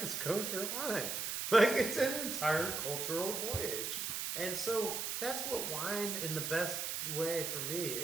is kosher wine? Like, it's an entire cultural voyage. And so that's what wine in the best way for me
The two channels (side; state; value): right; noise; hiss, 2 dB below the sound